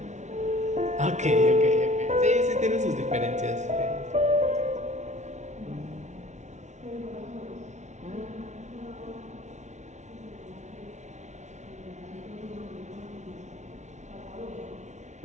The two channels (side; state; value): left; late; 0.33 ms